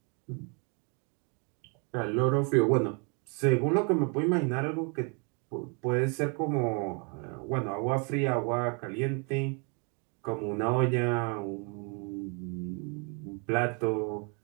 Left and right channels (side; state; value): left; quieter; 35.9 dB